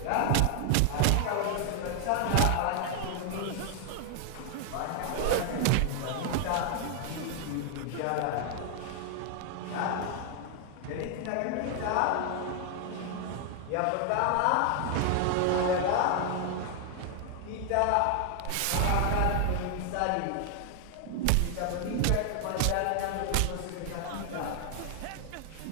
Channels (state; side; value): different; both; correlation 0.00